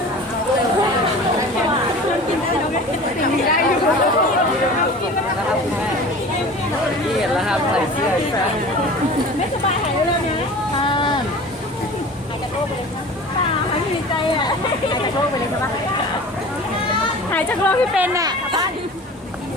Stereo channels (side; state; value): both; normal; correlation 0.39